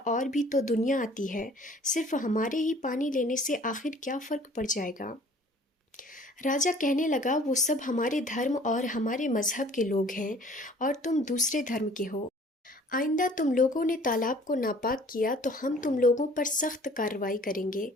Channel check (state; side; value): normal; both; correlation 0.52